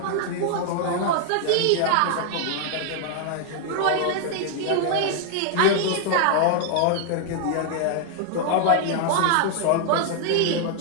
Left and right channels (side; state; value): both; different; correlation 0.00